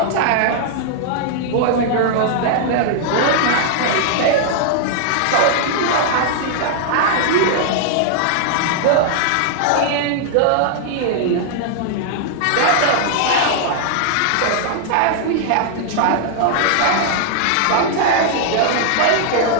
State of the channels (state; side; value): different; both; correlation 0.00